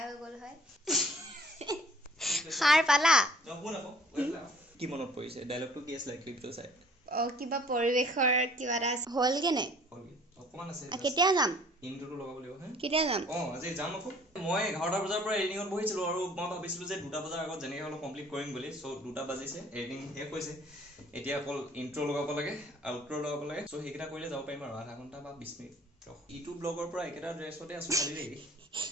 হৈ গ'ল হয় সাৰ পালা কি মনত পৰিছে ডায়লগটো কি আছিল ক্লিপটো চাই কিবা পৰিবেশৰ কিবা এটা হল কেনে অকমান আছে কেতিয়া যাম ইনট্ৰোটো লগাব লাগিব হে কেতিয়া যাম আজি যাম আকৌ মই 11টা বজাৰ পৰা এডিটিংত বহিছিলো আৰু মই ভাবিছিলো যে 2টা বজাৰ আগত যেনেকৈ হলো কমপ্লিট কৰিম বুলি সো 2টা বাজিছে এডিটিং শেষ হৈছে এতিয়া অকল ইনট্ৰো লগাব লাগে আউট্ৰো লগাব লাগে সো হেকিটা কৰিলে যাব পাৰিম আৰু আধা ঘণ্টা বা 20 মিনিট ইউটিউব ব্লগৰ পৰা একেটা ড্ৰেছতে আছো খালি দেই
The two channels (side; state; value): both; normal; correlation 0.55